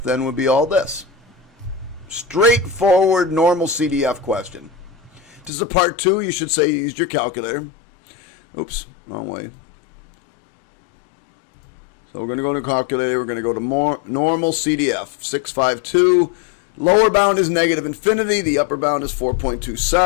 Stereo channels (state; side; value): drops out; right; at 5.5 s